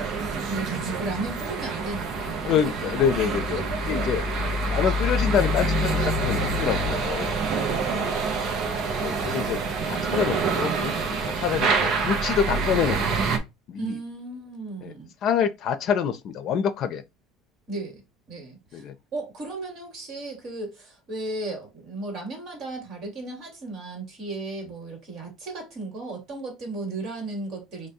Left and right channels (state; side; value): normal; both; correlation 0.46